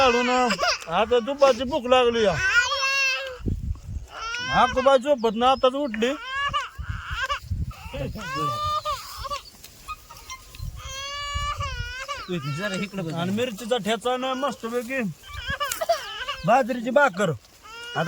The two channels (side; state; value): both; identical; correlation 1.00